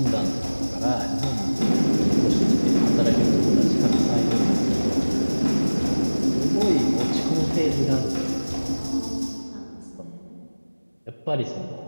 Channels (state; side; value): inverted; both; correlation -1.00